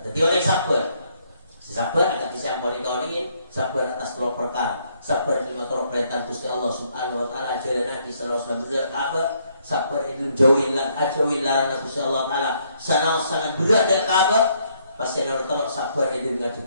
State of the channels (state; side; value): inverted; both; correlation -0.70